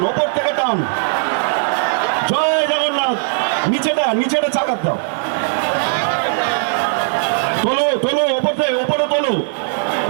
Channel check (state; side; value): silent; left; 63 dB below the other